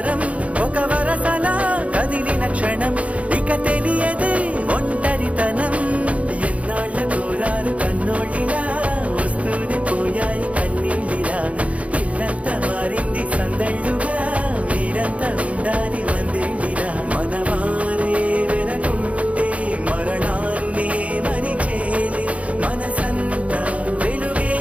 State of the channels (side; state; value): left; late; 0.065 ms